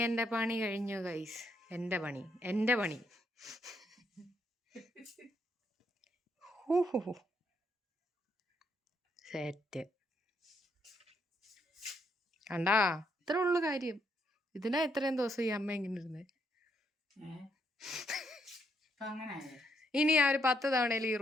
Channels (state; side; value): normal; both; correlation 0.74